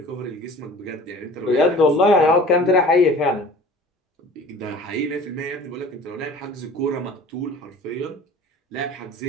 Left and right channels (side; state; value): both; normal; correlation 0.44